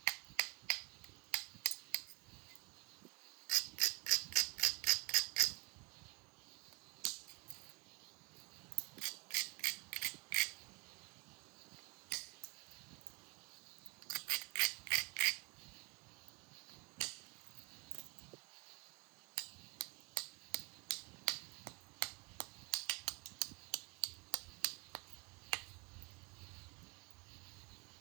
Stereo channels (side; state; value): left; quieter; 30.4 dB